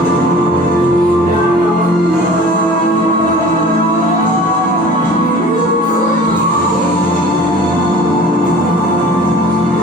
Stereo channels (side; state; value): both; normal; correlation 0.44